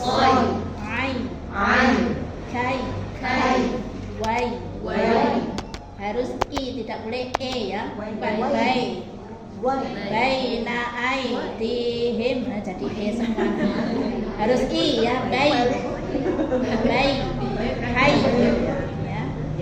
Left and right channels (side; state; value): both; identical; correlation 1.00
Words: Ai. Kai. Wai. Harus i, tidak boleh e ya. Bukan bai. Baina aidihim, nah jadi e semua. Harus i ya, hai